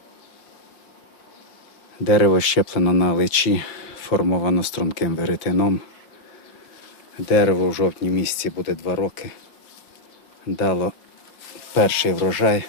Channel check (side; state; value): right; late; 5.5 ms